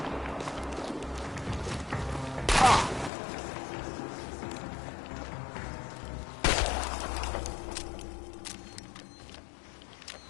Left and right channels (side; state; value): right; drops out; at 3.1 s